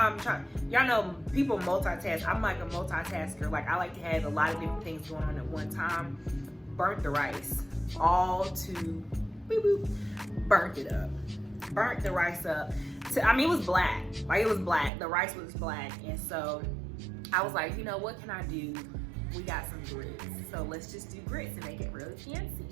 trying. Y'all know people multitask. I'm like a multitasker. Like, I like to have a lot of different things going on at one time. Burnt the rice, all to boop boop. Burnt it up. Burnt the rice up. It was black. Like, it was black. The rice was black, and so I was like, you know, what can I do? We got some grits, so let's just do grits and make it really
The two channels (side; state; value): left; drops out; at 14.9 s